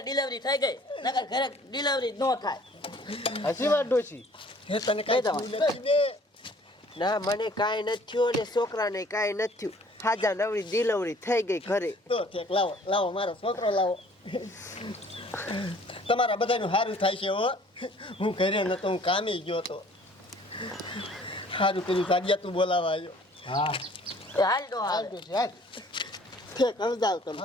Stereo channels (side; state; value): both; normal; correlation 0.54